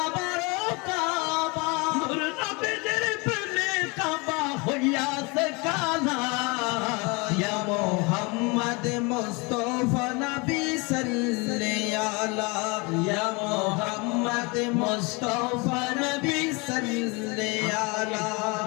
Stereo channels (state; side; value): quieter; right; 28.3 dB